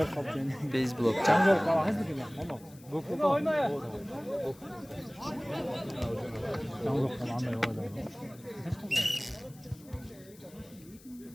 kaptın. Base block. Çamjol kala hızlı gibi. Tamam. Gokul oyna ya. Çamjol kala anlayı oyna.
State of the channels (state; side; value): noise; left; hiss, 24 dB below the sound